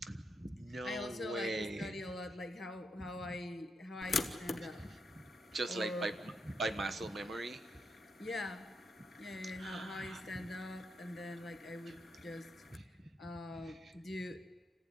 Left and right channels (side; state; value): both; normal; correlation 0.81